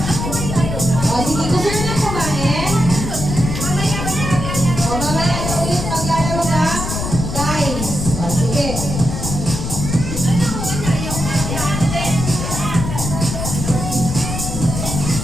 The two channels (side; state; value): left; noise; rumble, 4 dB below the sound